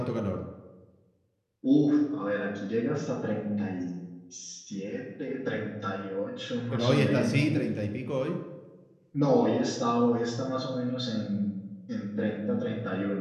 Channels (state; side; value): identical; both; correlation 1.00